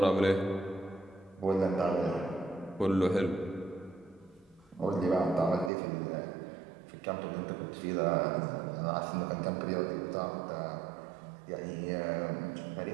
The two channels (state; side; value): drops out; left; at 5.7 s